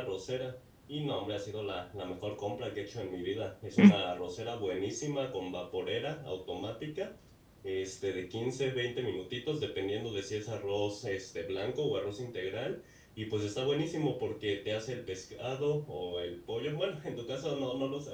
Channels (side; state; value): both; identical; correlation 1.00